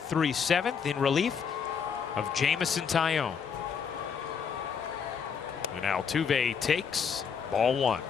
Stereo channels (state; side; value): quieter; right; 6.6 dB